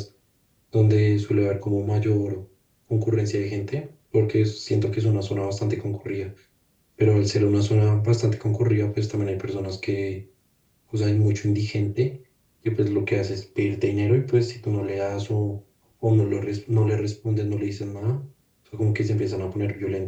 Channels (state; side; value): identical; both; correlation 1.00